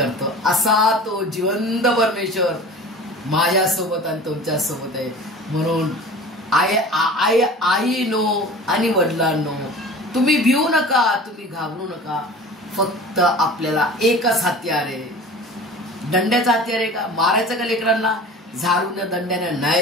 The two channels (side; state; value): both; normal; correlation 0.39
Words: असा तो जिवंत परमेश्वर माझ्या सोबत आणि तुमच्या सोबत आहे. म्हणून आईनो आणि वडिलांनो, तुम्ही भिवू नका, तुम्ही घाबरू नका. फक्त आपल्याला एकच हत्यार आहे. दंड्याचा हत्यार आहे का? मारायचं का लेकरांना झाडून दंड्याने?